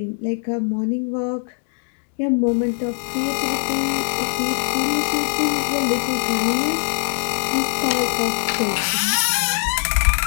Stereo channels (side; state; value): right; silent; 57 dB below the other